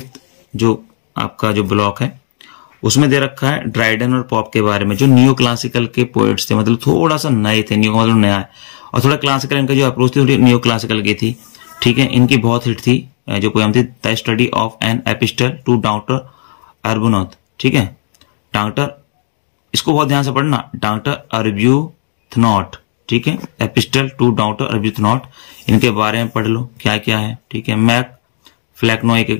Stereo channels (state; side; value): silent; right; digital silence